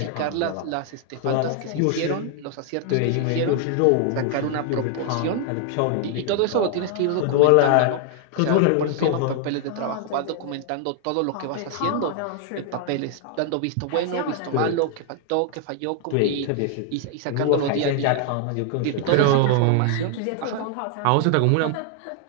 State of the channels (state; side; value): different; both; correlation 0.00